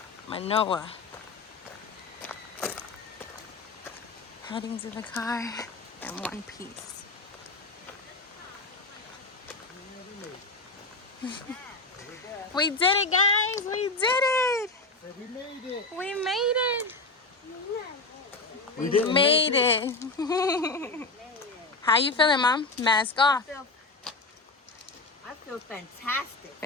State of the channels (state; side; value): quieter; right; 3.3 dB